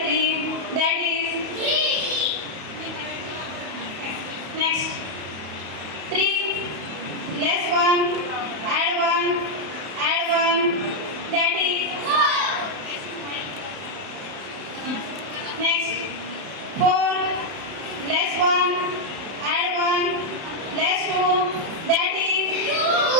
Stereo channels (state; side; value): late; left; 31 ms